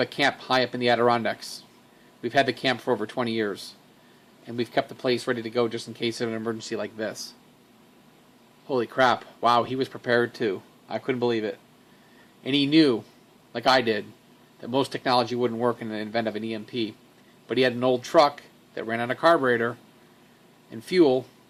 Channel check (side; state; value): both; identical; correlation 1.00